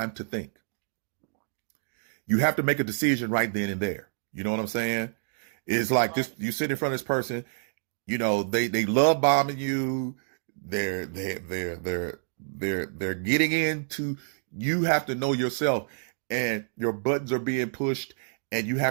to think. You have to make a decision right then and there. You know what I'm saying? It's like this: you sit in front of this person, they love bombing you. They're getting into. You have to know yourself, and your buttons are being pushed, and you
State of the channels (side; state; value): left; silent; digital silence